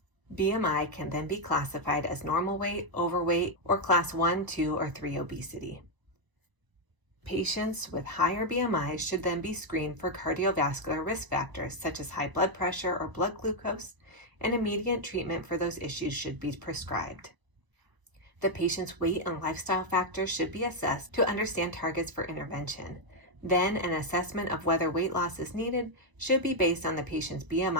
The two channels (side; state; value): left; late; 1.0 ms